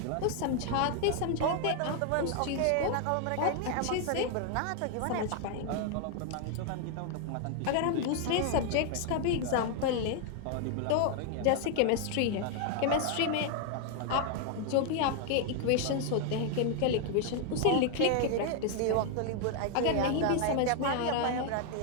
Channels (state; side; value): different; both; correlation 0.00